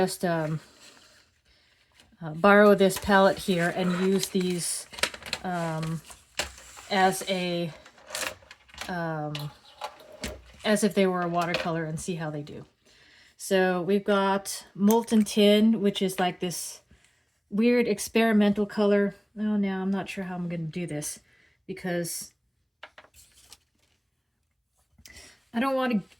borrow this palette here and use these as a as if they were a watercolor and see how they do. So we've got Molten Tin, which is like this weird experimental color. Oh, now I'm not sure how I'm going to do this because I don't want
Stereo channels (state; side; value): identical; both; correlation 1.00